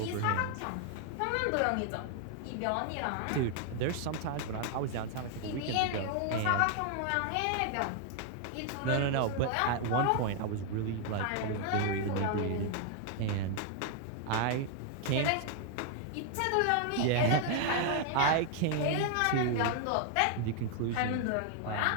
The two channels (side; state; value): both; different; correlation 0.00